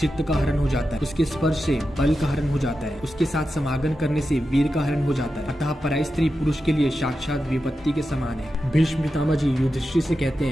का हरण हो जाता है, उसके स्पर्श से बल का हरण हो जाता है, उसके साथ समागम करने से वीर का हरण हो जाता है। अतः पराई स्त्री पुरुष के लिए साक्षात विपत्ति के समान है। भीष्म पितामह जी युधिष्ठिर से कहते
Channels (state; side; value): normal; both; correlation 0.90